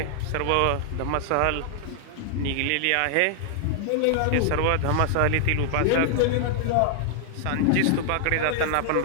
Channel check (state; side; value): different; both; correlation -0.01